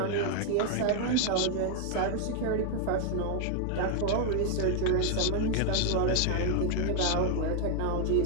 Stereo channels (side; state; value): both; different; correlation 0.00